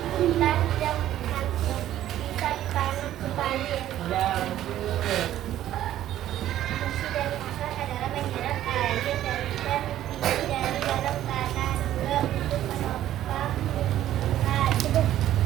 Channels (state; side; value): quieter; left; 12.6 dB